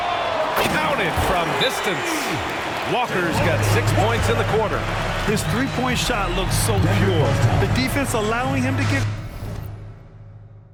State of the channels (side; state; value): both; identical; correlation 1.00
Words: Counted from distance. Walker's got 6 points in the quarter. His three-point shot looks so pure. The defense allowing him to get